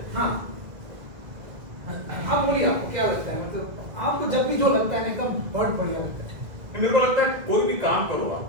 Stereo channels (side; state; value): left; late; 2.0 ms